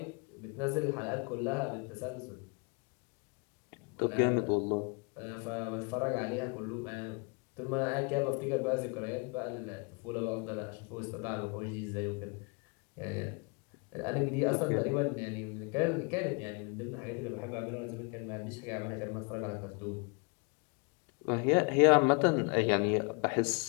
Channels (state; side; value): quieter; right; 34.0 dB